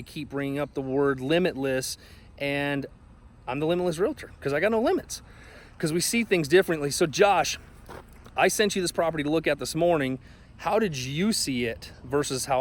keep bringing up the word limitless. And I'm the limitless realtor because I got no limits, because we see things differently. So Josh, I sent you this property to look at this morning. How did you see it versus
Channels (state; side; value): identical; both; correlation 1.00